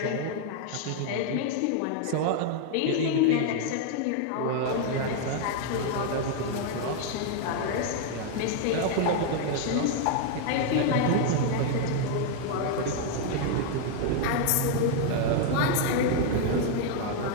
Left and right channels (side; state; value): both; different; correlation 0.00